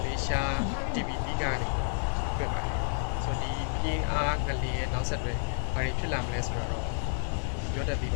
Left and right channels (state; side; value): silent; right; digital silence